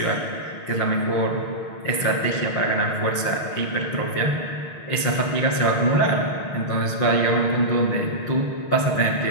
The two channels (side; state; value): right; late; 6.3 ms